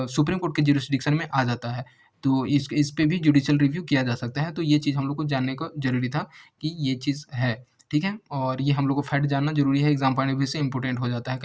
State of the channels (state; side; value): identical; both; correlation 1.00